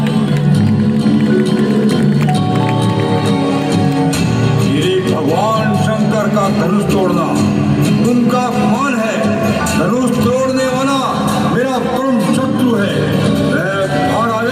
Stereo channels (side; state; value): both; identical; correlation 1.00